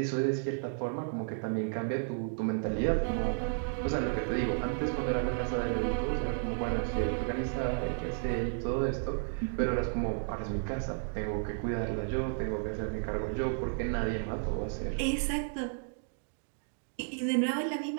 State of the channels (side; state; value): left; silent; digital silence